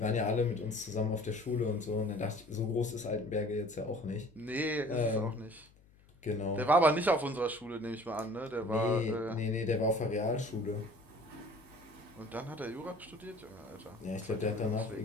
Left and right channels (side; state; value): left; noise; hum, 27 dB below the sound